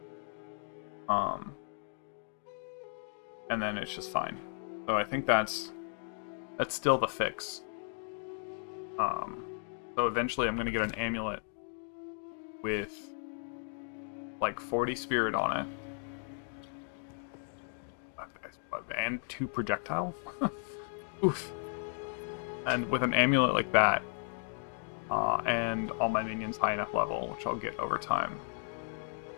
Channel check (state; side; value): silent; right; 54 dB below the other